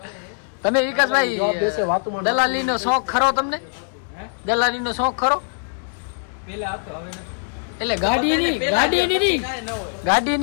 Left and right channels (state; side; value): silent; right; digital silence